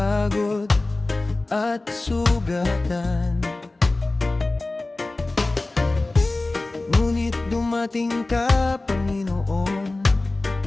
at sugatan. Ngunit dumating ka, Panginoon,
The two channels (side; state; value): right; quieter; 3.0 dB